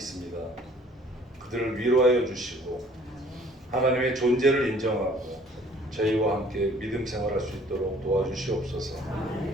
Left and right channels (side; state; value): both; normal; correlation 0.55